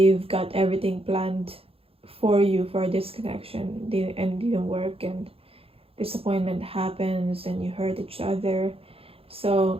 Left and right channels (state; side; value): late; left; 0.28 ms